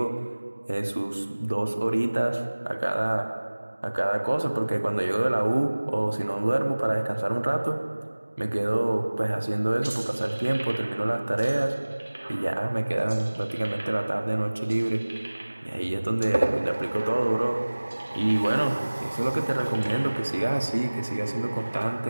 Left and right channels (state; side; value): inverted; both; correlation -1.00